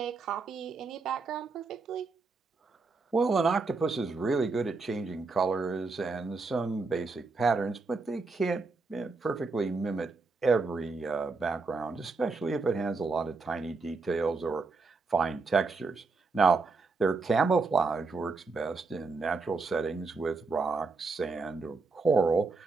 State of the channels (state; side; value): quieter; left; 4.0 dB